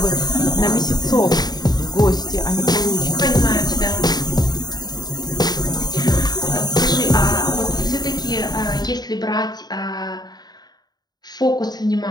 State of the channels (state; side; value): late; right; 0.20 ms